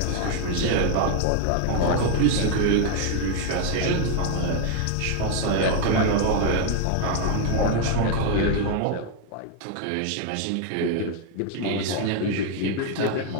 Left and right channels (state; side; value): different; both; correlation 0.00